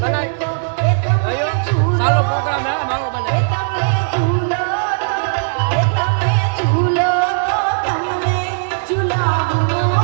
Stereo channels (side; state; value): left; silent; 68 dB below the other